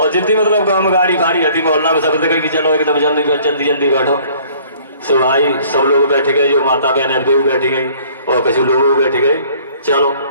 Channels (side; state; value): both; inverted; correlation -0.55